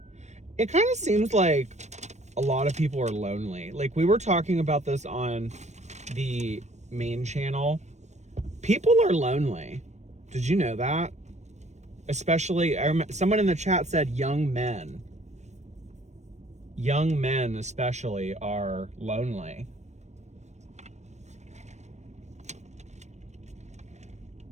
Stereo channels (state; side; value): late; left; 0.34 ms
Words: It kind of seems like a lot of people are lonely. Like we were talking about this on the main channel. People are lonely. Did you know that? Especially, someone in the chat said young men. Young men especially are lonely.